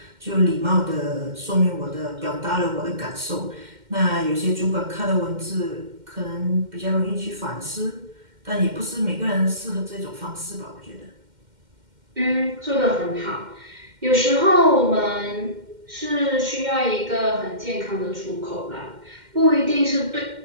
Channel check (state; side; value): late; left; 2.1 ms